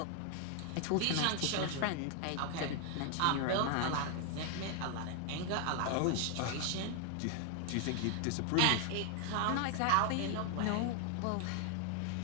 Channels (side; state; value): both; different; correlation 0.00